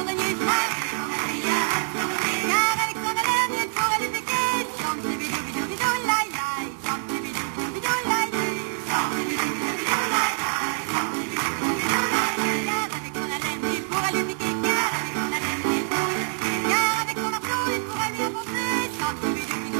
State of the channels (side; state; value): left; silent; digital silence